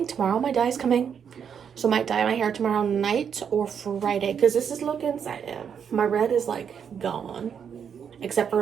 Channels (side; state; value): left; quieter; 7.5 dB